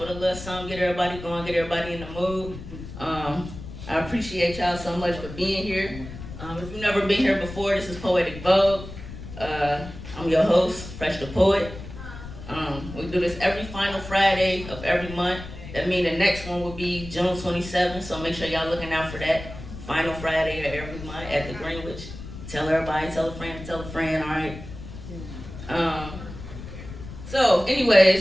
a little something, get everybody going, get everybody in the mood. I appreciate y'all so much for being here. If you've never been here before, this is Poetic Vogue. I'm your host, Fresh the Poet. We do this every final Friday of every month. That means the next one will be June 27th, so make sure y'all looking out for that. Final Friday of every month at the Greenwich. Tell everybody, tell a friend, all right? So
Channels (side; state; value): left; noise; rumble, 12 dB below the sound